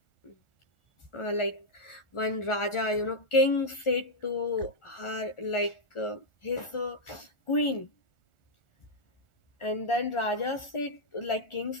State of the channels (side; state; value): right; late; 1.4 ms